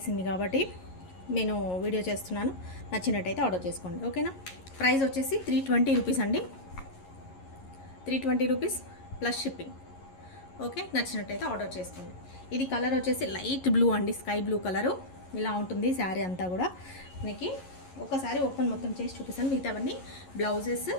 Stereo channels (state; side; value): late; right; 11 ms